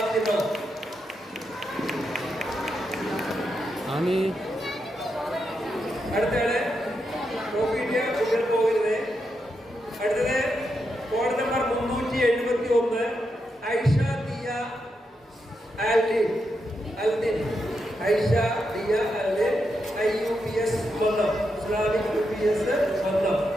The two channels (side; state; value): both; normal; correlation 0.84